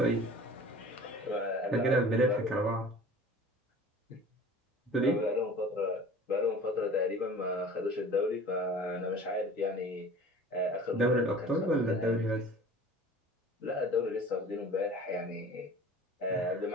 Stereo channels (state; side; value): normal; both; correlation 0.43